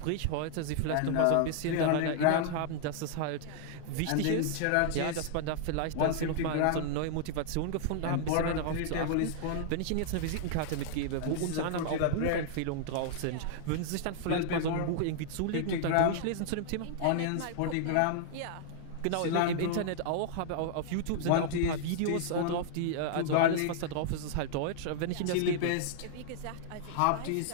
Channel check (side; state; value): both; different; correlation -0.01